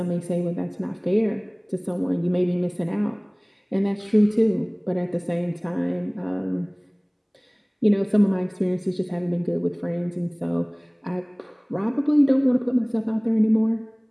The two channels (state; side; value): identical; both; correlation 1.00